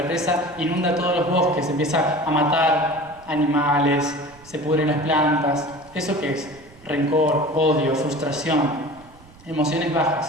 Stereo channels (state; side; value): noise; right; rumble, 24 dB below the sound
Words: inunda todos los bosques, se empieza a matar animales, se pudren las plantas. ¿Eso qué es? Rencor, odio, frustración, emociones